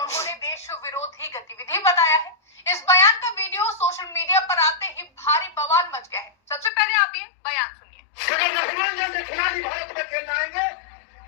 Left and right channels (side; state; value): right; drops out; at 6.7 s